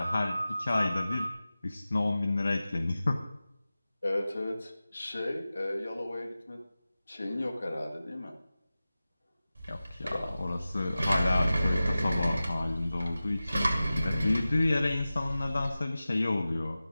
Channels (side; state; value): both; inverted; correlation -0.96